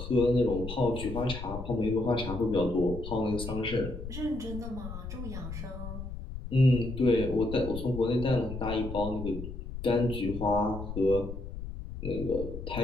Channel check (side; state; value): left; noise; rumble, 8 dB below the sound